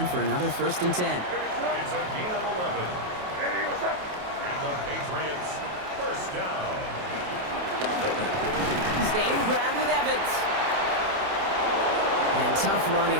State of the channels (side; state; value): left; late; 28 ms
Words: for another first and 10. It's a gain of 11. And the Patriots first down. Staying ground with Evans. And tough running